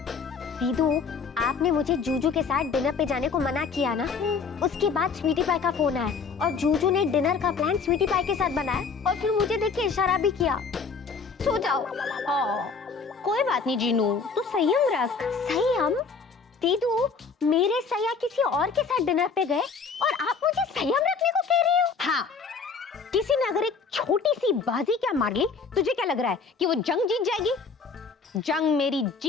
दीदू आपने मुझे जूजू के साथ डिनर पे जाने को मना किया ना, उसके बाद स्वीटी पाई का फोन आया और जूजू ने डिनर का प्लान स्वीटी पाई के साथ बनाया और फिर मुझे देख के इशारा भी किया। सो जाओ। कोई बात नहीं जीनू, तू संयम रख। संयम? दीदू मेरे सैया किसी और के साथ डिनर पे गए और आप मुझे संयम रखने को कह रही हो? हाँ, किसी ने अगर एक छोटी सी बाजी क्या मार ली, तुझे क्या लग रहा है कि वो जंग जीत जाएगी? जंग मेरी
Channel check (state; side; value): quieter; right; 5.2 dB